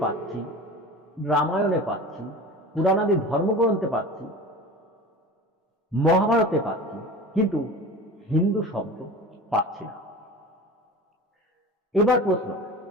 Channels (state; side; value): normal; both; correlation 0.35